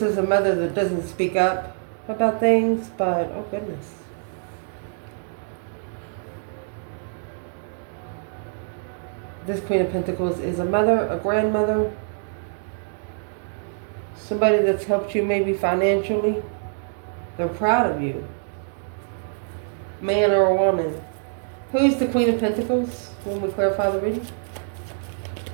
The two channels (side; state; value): left; silent; digital silence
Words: is a mother that doesn't speak up about things, but oh goodness. This Queen of Pentacles is a mother, a grandmother, somebody that's helped you maybe financially. They're proud of you. Man or a woman. Who's the Queen of Pentacles when we clarify the reading?